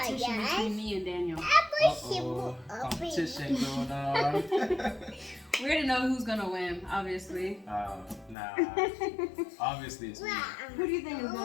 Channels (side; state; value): right; drops out; at 8.3 s